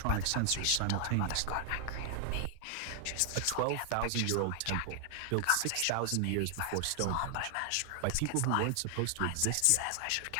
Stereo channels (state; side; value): different; both; correlation 0.00